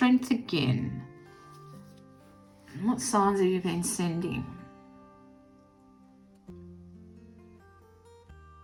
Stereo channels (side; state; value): both; identical; correlation 1.00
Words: again. What signs have you been sending?